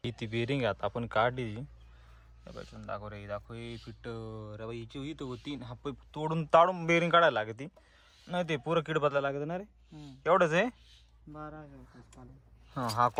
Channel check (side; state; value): both; identical; correlation 1.00